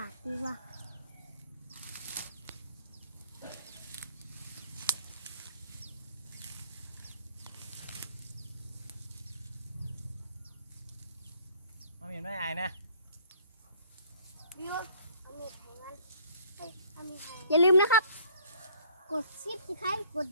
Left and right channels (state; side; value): inverted; both; correlation -0.57